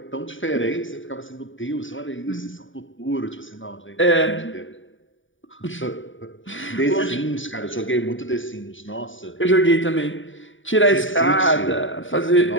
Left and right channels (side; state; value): right; late; 0.56 ms